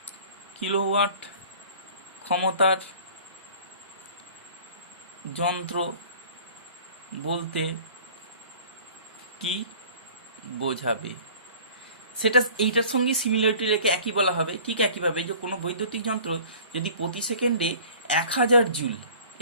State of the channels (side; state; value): both; inverted; correlation -0.47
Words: ক্ষমতার যন্ত্র বলতে কি বোঝাবে সেটা এইটার সঙ্গে সিমিলারিটি রেখে একই বলা হবে। ঠিক একইভাবে যে কোনো বৈদ্যুতিক যন্ত্র যদি প্রতি সেকেন্ডে 1000 জুল,